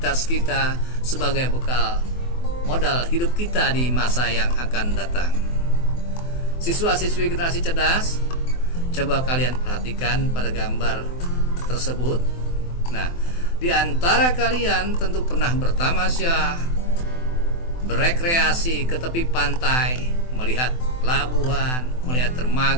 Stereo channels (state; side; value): late; right; 24 ms